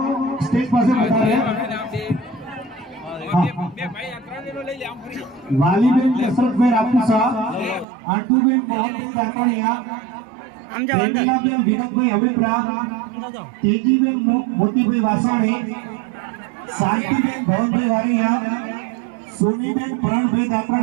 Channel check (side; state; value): left; drops out; at 7.9 s